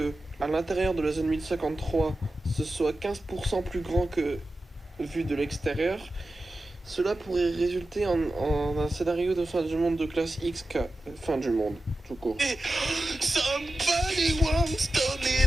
à l'intérieur de la zone 1053, ce soit 15% plus grand que vu de l'extérieur, cela pourrait résulter en un scénario de fin du monde de classe XK, fin du monde, tout court.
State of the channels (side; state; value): both; normal; correlation 0.93